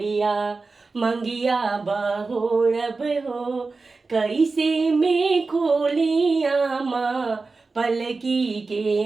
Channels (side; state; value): left; quieter; 4.0 dB